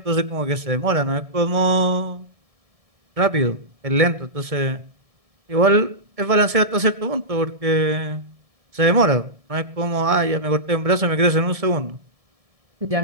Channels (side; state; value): left; late; 1.7 ms